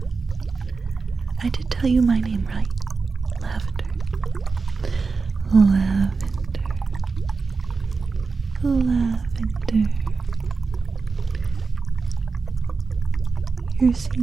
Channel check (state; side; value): quieter; left; 4.5 dB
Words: I did tell you my name right. Lavender. Lavender. Lavender. You're